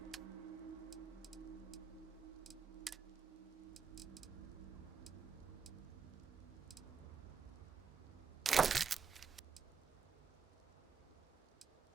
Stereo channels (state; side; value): quieter; left; 6.1 dB